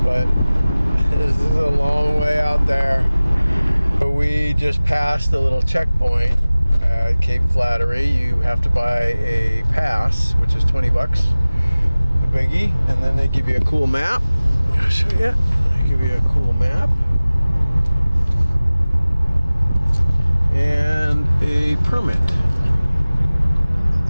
But this is a long way out there. We just passed a little checkpoint at Cape Flattery. You have to buy a pass, which is 20 bucks, a biggie, and then they give you a cool map. I'll show you. They give you a cool map and a permit.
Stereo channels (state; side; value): inverted; both; correlation -0.99